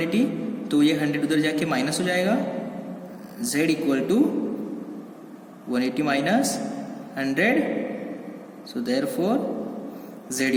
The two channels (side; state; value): both; identical; correlation 1.00